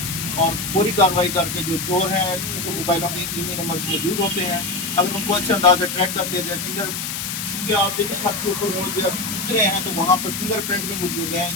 और पूरी कार्रवाई करके जो चोर हैं उनको मोबाइलों के ईमेल नंबर मौजूद होते हैं, अगर उनको अच्छे अंदाज से ट्रैक कर लिया जाए। क्योंकि आप देखिए छत के ऊपर वो जो उतरे हैं तो वहाँ पर फिंगरप्रिंट भी मौजूद है,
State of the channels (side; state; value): left; noise; hiss, 4 dB below the sound